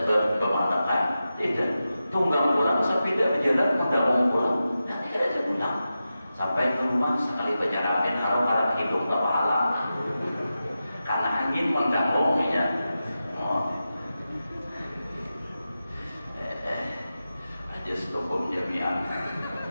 pemandangan tidak tunggang pulang Sabida berjalan udah mau pulang, nanti ada dia pulang sampai ke rumah sekali berjaramin harap hidup tak pahala karena angin mengganggunya. Aja stopom jamian.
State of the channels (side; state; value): both; inverted; correlation -0.92